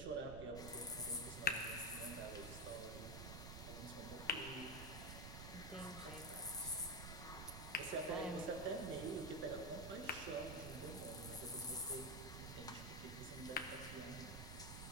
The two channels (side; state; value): right; noise; rumble, 7 dB below the sound